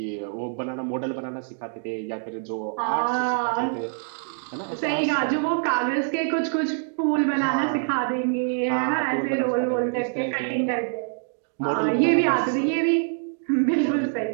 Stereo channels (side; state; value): left; silent; digital silence